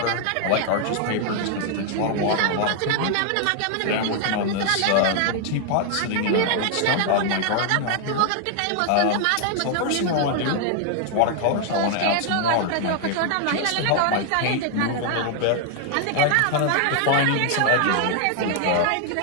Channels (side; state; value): both; different; correlation 0.00